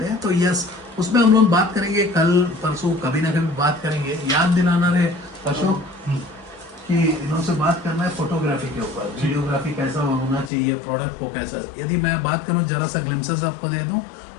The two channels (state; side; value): drops out; right; at 10.5 s